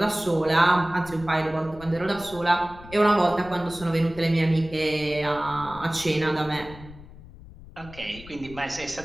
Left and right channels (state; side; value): noise; left; rumble, 18 dB below the sound